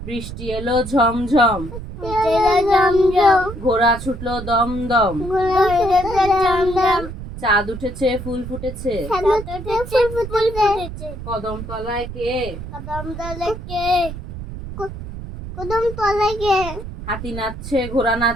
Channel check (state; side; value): noise; right; rumble, 10 dB below the sound